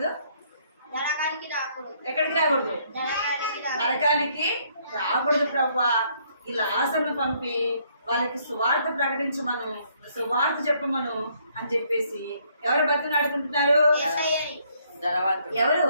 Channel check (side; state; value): both; inverted; correlation -0.68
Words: ఎక్కడికి రాకూడదు? నరకానికి రాకూడదు ప్రభువా. ఈ లాజరును పంపి వాళ్ళకి సువార్త ప్రకటించమను, సువార్త చెప్పమను అని చెప్పేసి ఎవరు బతినాడుకుంటున్నారు? ఎవరు?